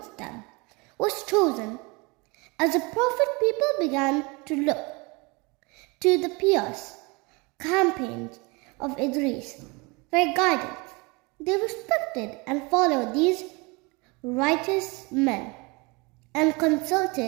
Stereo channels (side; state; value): left; quieter; 27.6 dB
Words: them was chosen. As a prophet, people began to look to the pious campaigns of Idris for guidance. They respected and followed these righteous men and